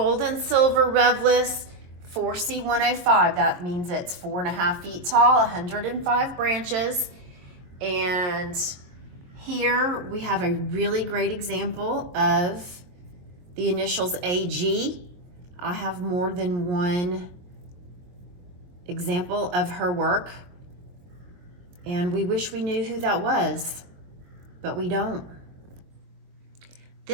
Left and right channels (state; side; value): late; left; 23 ms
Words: and silver REVLIS 4C105. That means it's 4.5 feet tall, 105 branches. And here we have a really great example of the initials AG. I have more than one example of her work, and we wish we knew who that was, but we don't.